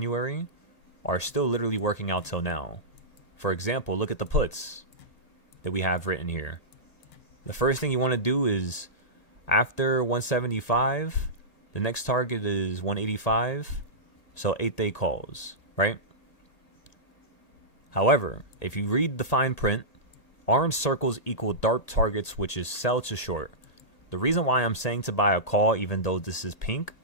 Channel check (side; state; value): right; late; 1.8 ms